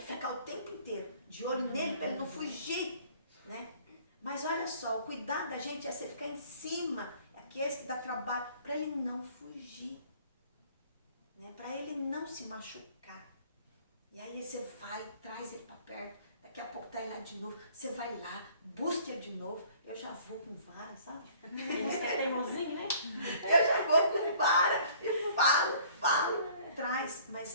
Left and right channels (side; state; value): both; inverted; correlation -0.54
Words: ficar o tempo inteiro de olho nele para ele não fugir, né? Mas olha só, o cuidado da gente é você ficar em cima, aqueles que dá trabalho, para ele não fugir, né? Para ele não se machucar. E aí você vai, traz ele para perto, daqui a pouco tá ele lá de novo, você vai lá, busca ele de novo, eu já vou com vara, sabe? Você é teimosinho, né? Eu já vou com vara e falo, traz,